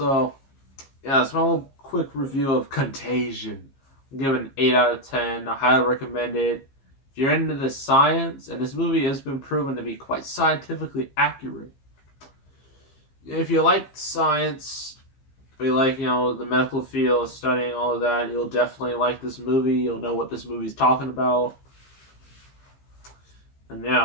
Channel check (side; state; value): right; late; 15 ms